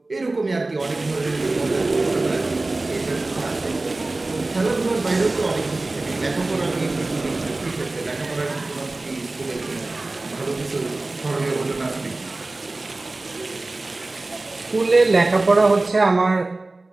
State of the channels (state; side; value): quieter; left; 3.1 dB